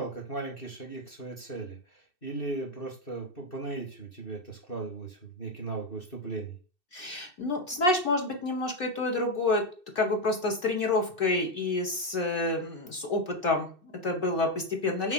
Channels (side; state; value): right; late; 2.7 ms